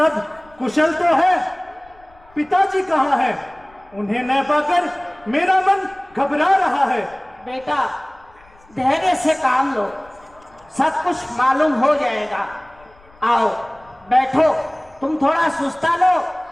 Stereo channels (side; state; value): left; noise; rumble, 29 dB below the sound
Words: कुशल तो है? पिताजी कहाँ हैं? उन्हें न पाकर मेरा मन घबरा रहा है। बेटा, धैर्य से काम लो, सब कुछ मालूम हो जाएगा। आओ बैठो, तुम थोड़ा सुस्ता लो,